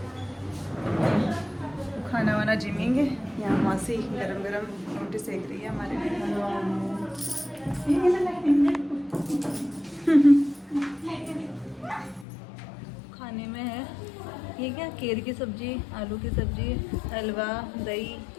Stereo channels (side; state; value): right; drops out; at 12.2 s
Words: खाना वाना जिमेंगे। यहाँ मासी गरम गरम रोटी सेक रही है हमारे लिए। खाने में है ये क्या, केर की सब्जी, आलू की सब्जी, हलवा, दही।